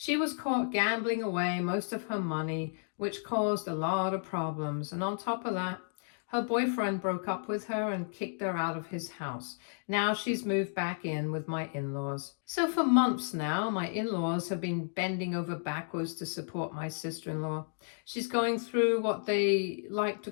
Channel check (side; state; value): right; silent; digital silence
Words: was caught gambling away most of her money, which caused a lot of problems. And on top of that, her boyfriend broke up with her and kicked her out of his house. Now she's moved back in with my in-laws. So for months now, my in-laws have been bending over backwards to support my sister-in-law. She's going through what they like to